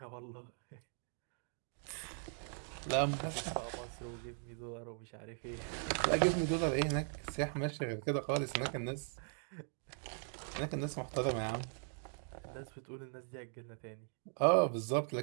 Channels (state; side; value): silent; left; 51 dB below the other